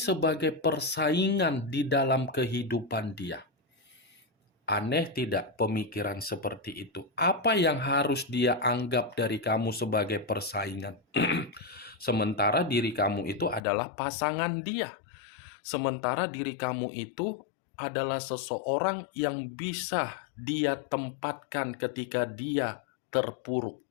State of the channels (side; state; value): right; drops out; at 13.6 s